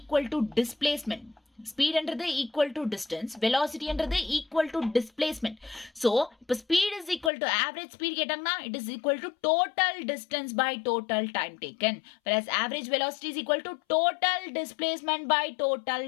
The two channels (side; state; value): right; drops out; at 7.3 s